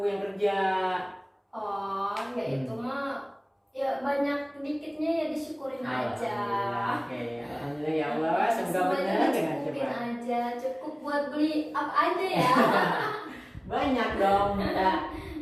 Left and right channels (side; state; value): both; identical; correlation 1.00